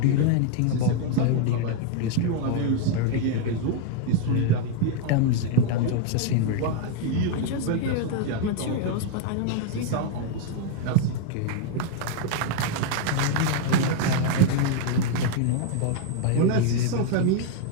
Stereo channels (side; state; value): both; different; correlation 0.00